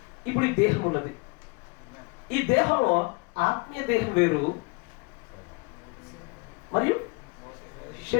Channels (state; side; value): quieter; right; 29.0 dB